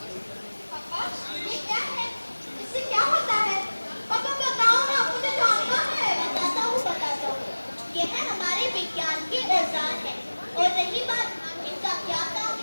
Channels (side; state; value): both; inverted; correlation -1.00